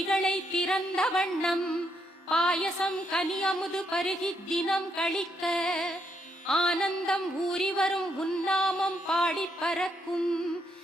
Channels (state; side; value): late; right; 35 ms